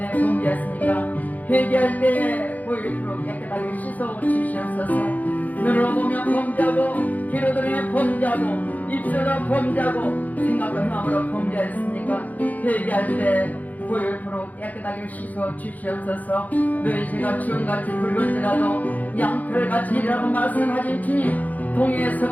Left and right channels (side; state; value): right; late; 0.079 ms